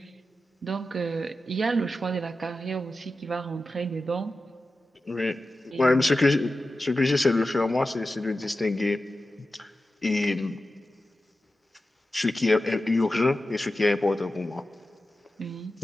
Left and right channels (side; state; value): both; normal; correlation 0.93